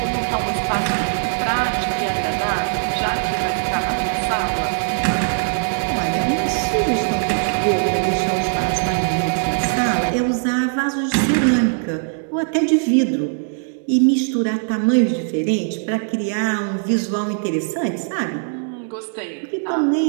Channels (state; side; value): silent; left; 64 dB below the other